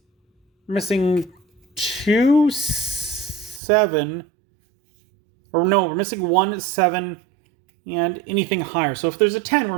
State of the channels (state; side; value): drops out; left; at 3.6 s